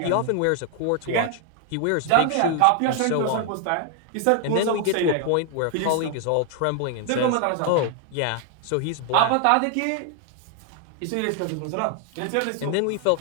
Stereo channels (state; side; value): different; both; correlation 0.00